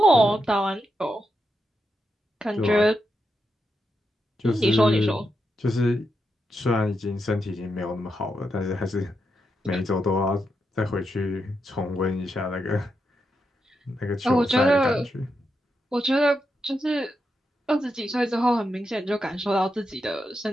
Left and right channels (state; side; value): normal; both; correlation 0.84